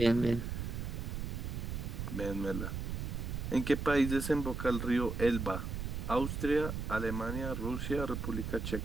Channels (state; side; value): noise; right; rumble, 4 dB below the sound